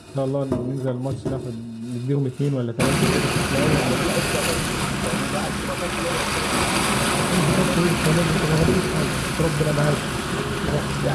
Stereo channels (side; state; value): both; identical; correlation 1.00